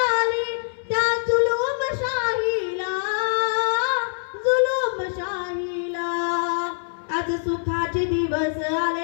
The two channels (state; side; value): silent; right; 63 dB below the other